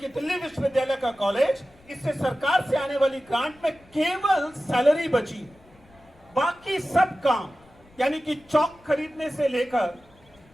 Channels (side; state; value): left; noise; rumble, 28 dB below the sound